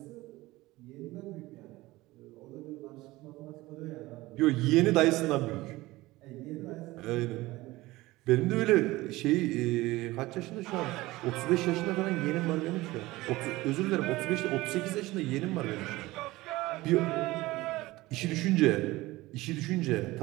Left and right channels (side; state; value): left; quieter; 19.2 dB